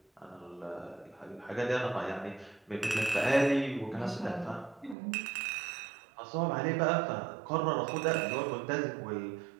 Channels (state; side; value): drops out; left; at 5.0 s